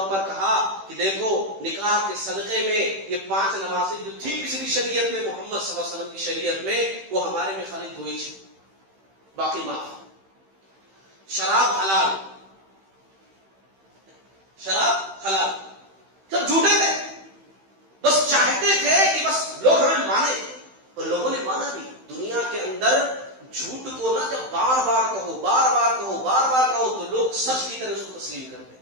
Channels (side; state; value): left; late; 15 ms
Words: پر کہا کہ دیکھو نکاح کے صدقے میں یہ 5 نمازیں جو تھی پچھلی شریعت میں، محمد صلی اللہ علیہ وسلم کی شریعت میں، وہ ہمارے میں خالی 2 ہی، باقی معاف. شراب حلال، شراب حلال. سب جھوٹے تھے، بس چاہتے تھے کہ بس لوگ ہمیں مانے. اور لوگوں نے مانا بھی. دنیا کے اندر جھوٹ کو نہ جب بار بار کہو، بار بار کہو، بار بار کہو تو لوگ سچ کی طرح اس کو تسلیم کرتے